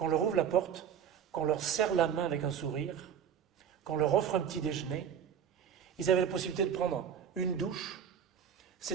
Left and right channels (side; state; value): left; quieter; 8.4 dB